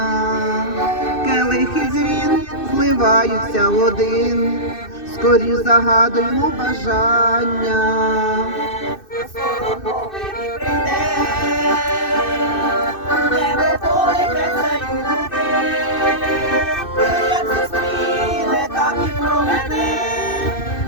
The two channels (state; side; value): late; right; 2.6 ms